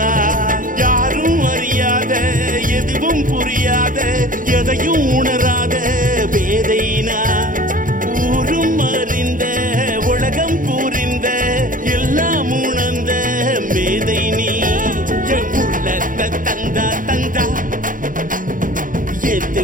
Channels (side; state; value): left; late; 0.39 ms